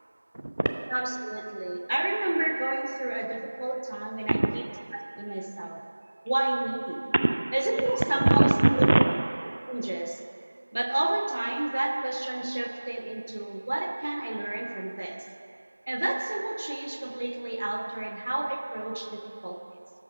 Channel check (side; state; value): both; inverted; correlation -1.00